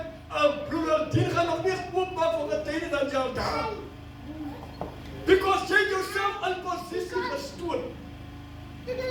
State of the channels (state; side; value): identical; both; correlation 1.00